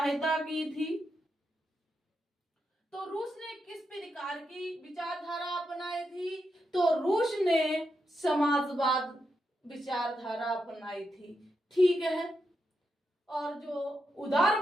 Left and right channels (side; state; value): both; normal; correlation 0.85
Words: की थी। तो रूस ने किस प्रकार की विचारधारा अपनाई थी? तो रूस ने समाजवाद विचारधारा अपनाई थी। ठीक है, और जो